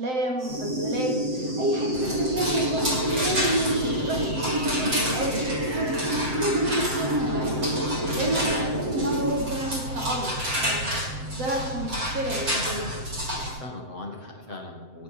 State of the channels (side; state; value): left; late; 7.8 ms